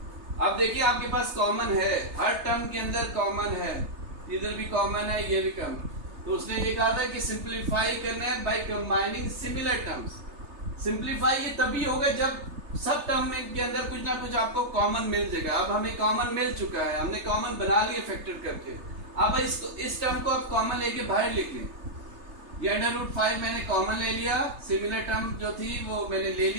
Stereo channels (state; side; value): late; left; 3.3 ms